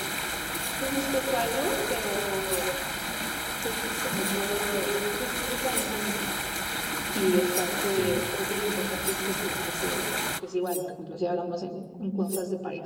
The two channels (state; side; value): identical; both; correlation 1.00